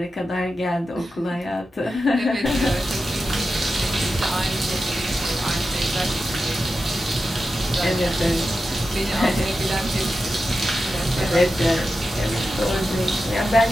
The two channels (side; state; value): both; normal; correlation 0.91